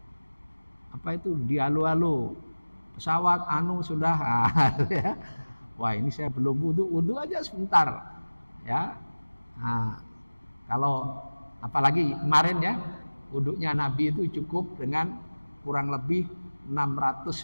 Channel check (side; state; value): both; inverted; correlation -1.00